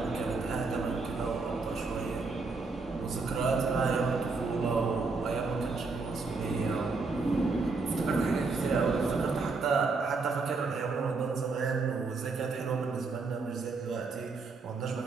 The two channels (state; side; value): quieter; left; 4.1 dB